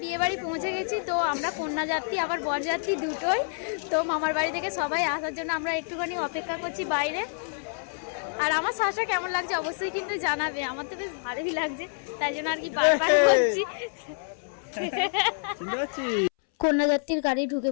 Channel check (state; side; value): silent; right; 60 dB below the other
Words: বিয়ে বাড়ি পৌঁছে গেছি, তো আমরা কন্যা যাত্রী আবার বর যাত্রী দুটোই। তো মামার বাড়ি থেকে সবাই আসার জন্য আমরা একটুখানি অপেক্ষা করছি বাইরে। আর আমার শাশুড়ি কেমন লাগছে অবশ্যই কিন্তু জানাবে, আমার তো বেশ ভালোই লাগছে, তাই জন্য আর কি বারবার বলছি। কন্যাযাত্রীর গাড়ি ঢুকে